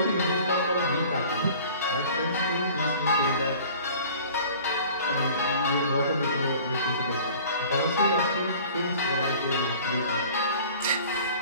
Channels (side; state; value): both; inverted; correlation -0.46